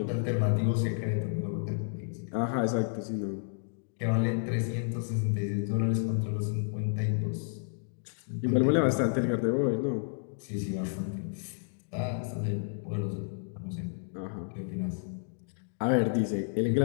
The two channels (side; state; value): right; silent; digital silence